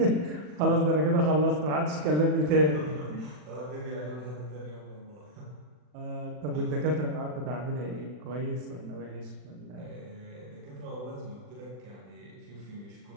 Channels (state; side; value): late; left; 40 ms